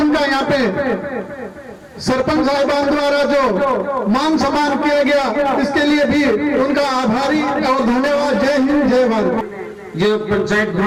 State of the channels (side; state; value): both; identical; correlation 1.00